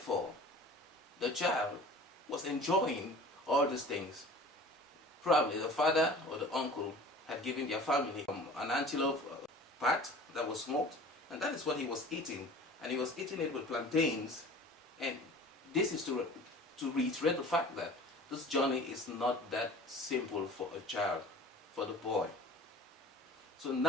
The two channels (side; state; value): both; normal; correlation 0.43